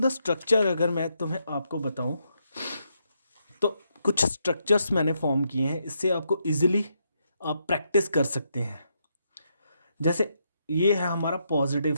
स्ट्रक्चर अगर मैं तुम्हें आपको बताऊं तो कुछ स्ट्रक्चर्स मैंने फॉर्म किए हैं, इससे आपको इजीली आप प्रैक्टिस कर सकते हैं। जैसे ये है हमारा पॉजिटिव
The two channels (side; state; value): both; inverted; correlation -0.79